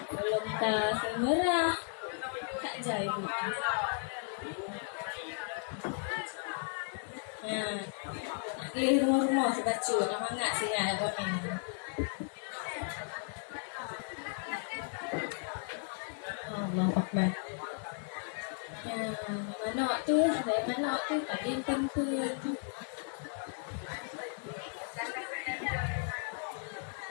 Belum tak semerah. Tak jai bu. Nah, nak rumah-rumah sebacu nak mangat sinyal kau ni. Allah Akbar. Manok tu, dari manok tu tadi tempur.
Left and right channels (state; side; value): silent; right; 54 dB below the other